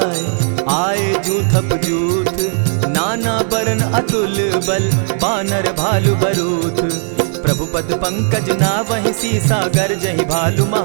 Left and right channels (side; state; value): left; silent; digital silence